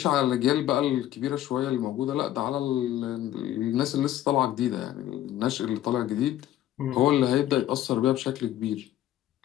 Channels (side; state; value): right; quieter; 12.9 dB